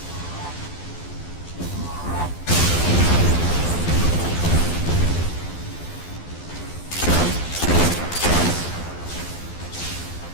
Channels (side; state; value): right; late; 12 ms